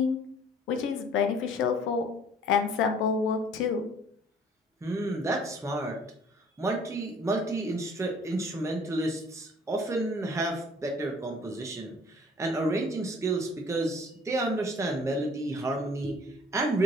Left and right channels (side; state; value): both; normal; correlation 0.54